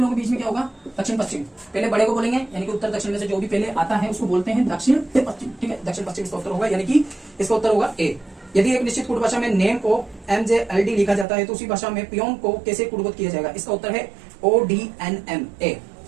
के बीच में क्या होगा? दक्षिण पश्चिम, पहले बड़े को बोलेंगे यानी कि उत्तर दक्षिण में से जो भी पहले आता है उसको बोलते हैं दक्षिण पश्चिम, ठीक है। दक्षिण पश्चिम इसका उत्तर होगा, यानी कि इसका उत्तर होगा ए। यदि एक निश्चित कूट भाषा में नेम को MJLD लिखा जाता है तो उसी भाषा में पियोन को कैसे कूटबद्ध किया जाएगा? इसका उत्तर है ODNMA,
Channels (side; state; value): left; drops out; at 11.2 s